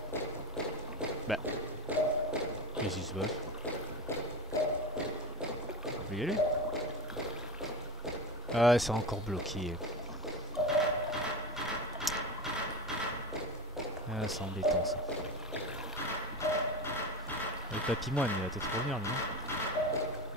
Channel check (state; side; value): normal; both; correlation 0.36